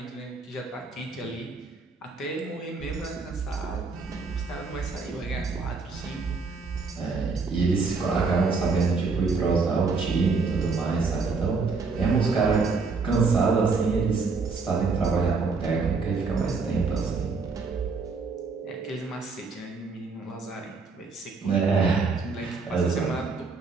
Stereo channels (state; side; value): quieter; left; 4.4 dB